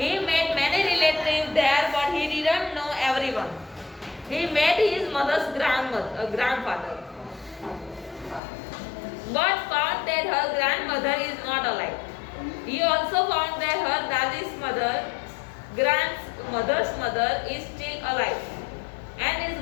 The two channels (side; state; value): right; drops out; at 8.4 s